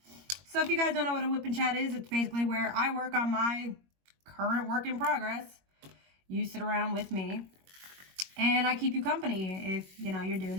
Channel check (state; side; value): late; left; 21 ms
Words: So if you guys don't know what a Whippin' Chat is, it's basically where I work on my current work in progress. You sit around with me and I keep you company if, you know, you're doing